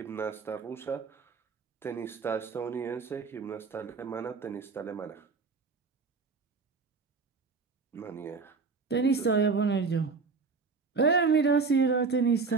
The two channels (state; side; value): quieter; left; 4.6 dB